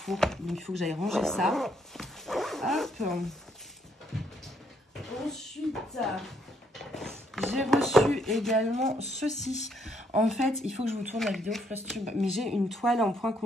Donc, il faut que j'aille ranger ça. Hop. Ensuite, j'ai reçu également ceci. En fait, il faut que je vous tourne la vidéo Flosstube. Mais j'ai une toile en point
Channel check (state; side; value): normal; both; correlation 0.70